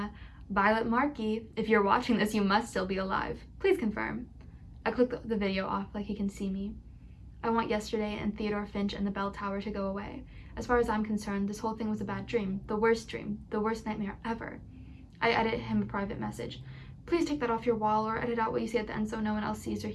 "Violet Markey, if you're watching this, you must still be alive. Please confirm." I click the video off like he can see me. I want yesterday and Theodore Finch and the bell tower to go away. As far as I'm concerned, this whole thing was a bad dream, the worst nightmare ever. I edit him a private message. Please take that off your wall or edit out what you say at the end so no one else sees or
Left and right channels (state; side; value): identical; both; correlation 1.00